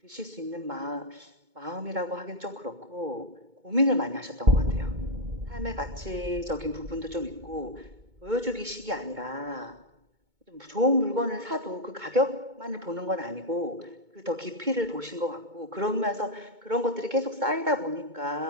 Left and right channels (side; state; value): left; late; 2.2 ms